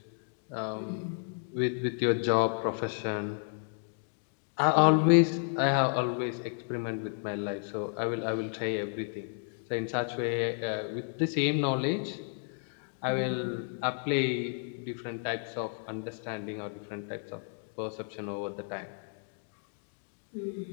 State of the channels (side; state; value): right; silent; 56 dB below the other